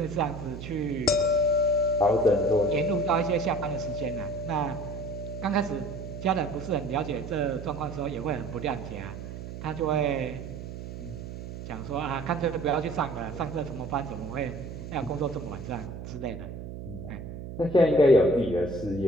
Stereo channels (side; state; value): right; noise; hum, 9 dB below the sound